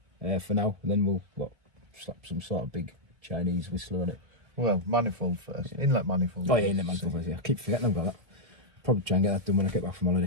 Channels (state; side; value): late; left; 1.3 ms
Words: for now. And then we'll slap some sort of big Chinese whistler on it. Well, manifold first. Yeah. Inlet manifold. Oh yeah, inlet manifold first. Yeah, I keep forgetting I've got that. Probably try and get that done when I get back from